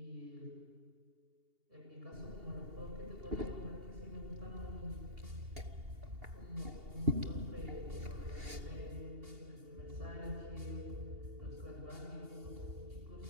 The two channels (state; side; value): late; left; 2.8 ms